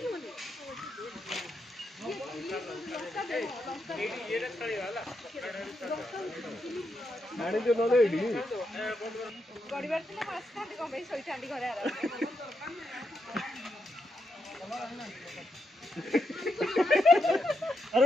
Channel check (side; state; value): both; normal; correlation 0.82